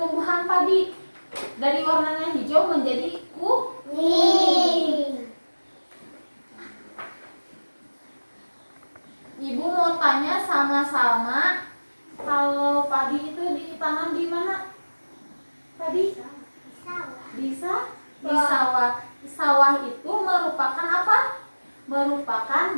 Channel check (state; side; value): inverted; both; correlation -1.00